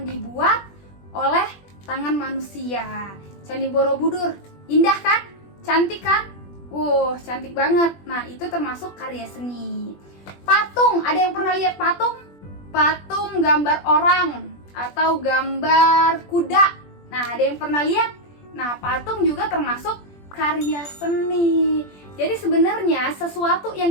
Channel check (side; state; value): right; late; 21 ms